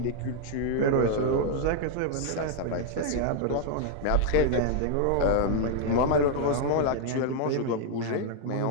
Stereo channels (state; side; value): different; both; correlation 0.00